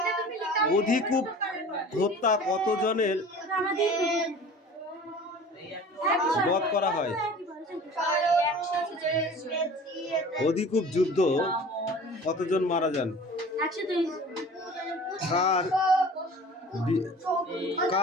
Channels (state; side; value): normal; both; correlation 0.43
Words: অধিকূপ হত্যা কতজনের বধ করা হয়? অধিকূপ যুদ্ধ কতজন মারা যান?